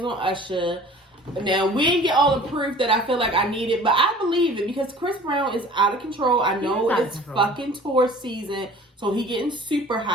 on Usher. Now, we didn't get all the proof that I feel like I needed, but I believe it, because Chris Brown is out of control. I know it's fucking tour season, so he getting super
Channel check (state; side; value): normal; both; correlation 0.46